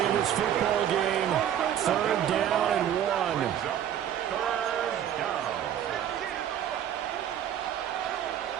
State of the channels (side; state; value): left; quieter; 10.2 dB